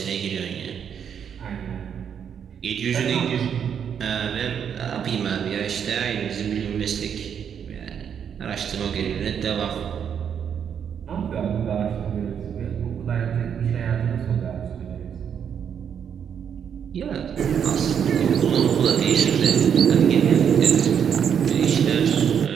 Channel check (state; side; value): quieter; left; 8.0 dB